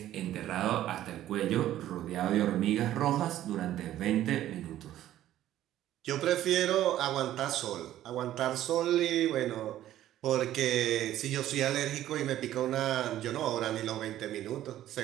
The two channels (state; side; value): quieter; left; 13.0 dB